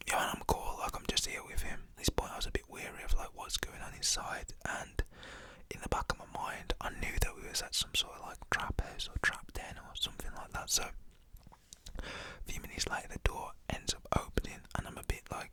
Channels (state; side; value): identical; both; correlation 1.00